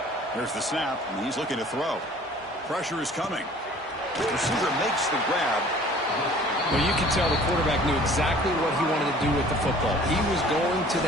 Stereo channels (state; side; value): normal; both; correlation 0.50